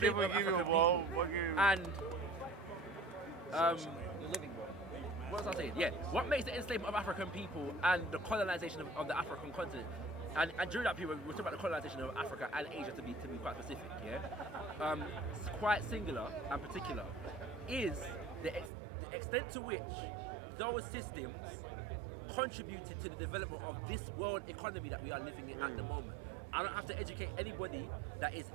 of give you a African ball. people Give you. and You're living, bro. what was I saying? Yeah, what makes the enslavement of African people and the colonization of the African continent, and during that period, we're talking about the colonization of Africa and Asia to be quite specific, yeah, quite singular and particular, is the extent to which those systems contributed to the development of this world economy that we are living in at the moment. I don't have to educate anybody that is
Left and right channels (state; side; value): drops out; left; at 18.7 s